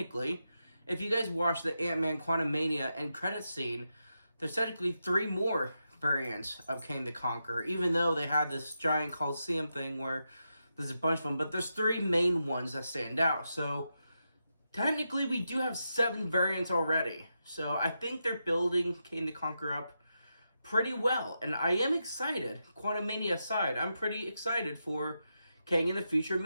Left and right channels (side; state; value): both; inverted; correlation -0.86